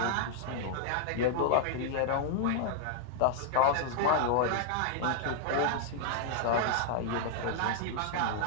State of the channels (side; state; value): both; different; correlation -0.01